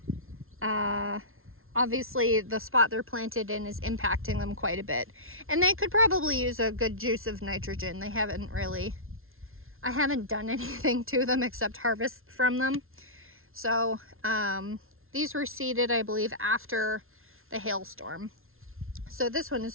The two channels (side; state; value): left; late; 0.61 ms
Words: obviously the spot they're planted in is impacting them quite a bit. And they could probably use a good juice of nitrogen. I haven't done anything to them except harvest from them. So these were seeded, I believe, after the hailstorm. So this one is